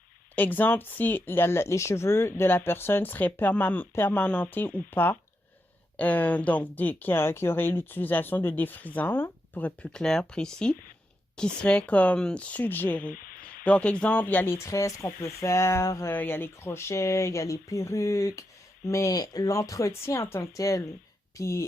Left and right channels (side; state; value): both; normal; correlation 0.85